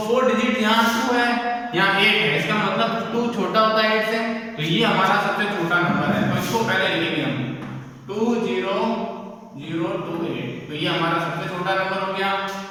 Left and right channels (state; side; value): identical; both; correlation 1.00